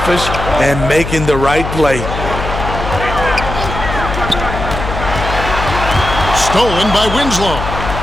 and making the right play. Stolen by Winslow.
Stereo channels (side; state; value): left; noise; hum, 6 dB below the sound